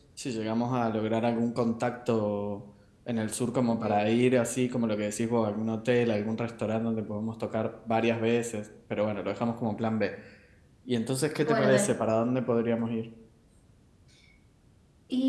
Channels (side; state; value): both; identical; correlation 1.00